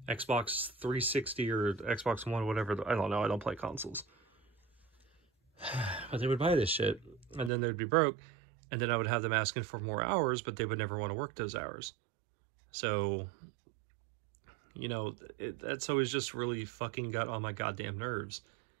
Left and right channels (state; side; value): drops out; left; at 7.5 s